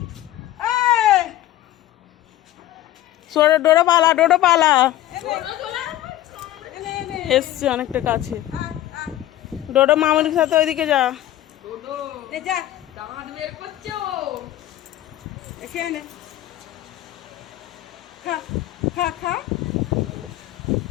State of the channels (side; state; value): right; quieter; 14.0 dB